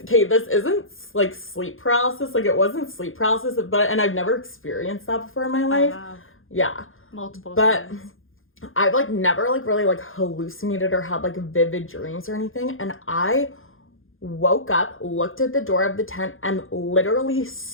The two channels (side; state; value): right; late; 0.59 ms